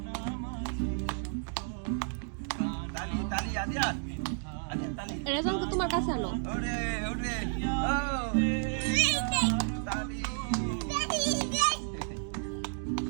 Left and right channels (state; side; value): silent; left; 57 dB below the other